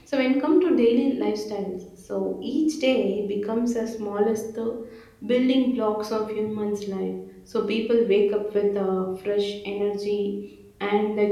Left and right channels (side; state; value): both; identical; correlation 1.00